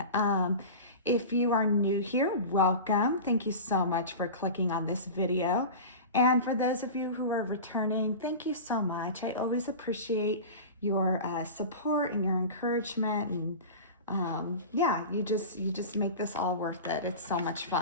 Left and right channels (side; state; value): both; inverted; correlation -0.30